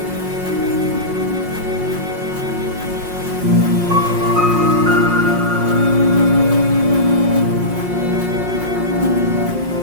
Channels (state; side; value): late; left; 5.6 ms